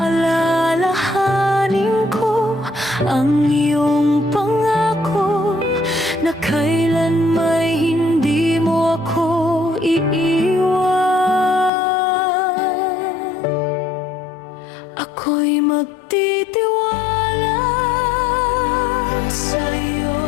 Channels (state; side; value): drops out; right; at 11.7 s